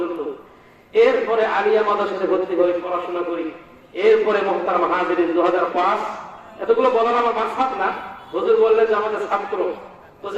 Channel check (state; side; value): identical; both; correlation 1.00